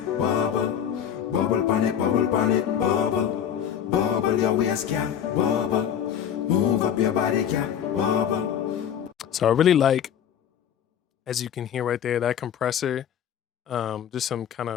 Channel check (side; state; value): right; quieter; 9.0 dB